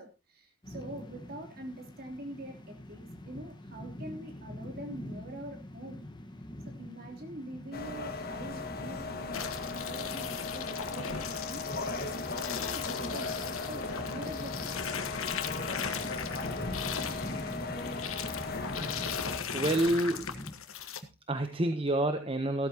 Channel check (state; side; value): normal; both; correlation 0.36